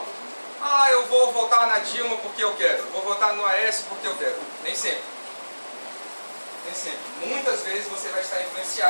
Eu vou votar na Dilma porque eu quero, vou votar no Aécio porque eu quero. Nem sempre. Nem sempre. Muitas vezes você vai estar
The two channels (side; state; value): both; inverted; correlation -1.00